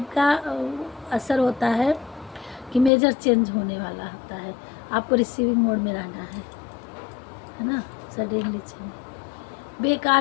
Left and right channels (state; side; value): drops out; right; at 2.9 s